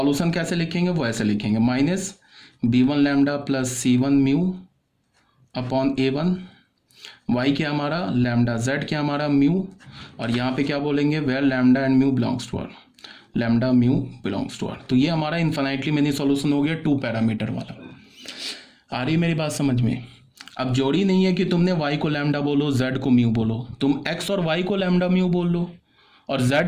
कैसे लिखेंगे, वो ऐसे लिखेंगे, minus b1 lambda plus c1 mu upon a1। y क्या हमारा लैम्डा, z क्या हमारा म्यू, और यहाँ पे क्या बोलेंगे, where lambda and mu belongs to R, lambda mu belongs to R. तो ये हमारा इन्फिनाइटली मेनी सॉल्यूशन हो गया टू पैरामीटर वाला। आ रही मेरी बात समझ में? अब जोड़ी नहीं है कि तुमने y को लैम्डा बोलो, z को म्यू बोलो, तुम x और y को लैम्डा म्यू बोल लो और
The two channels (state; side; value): identical; both; correlation 1.00